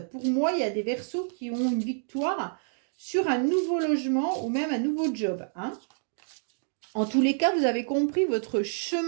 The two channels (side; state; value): left; silent; digital silence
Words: Pour moi, il y a des Verseaux qui ont une victoire sur un nouveau logement ou même un nouveau job. Hein. En tous les cas, vous avez compris votre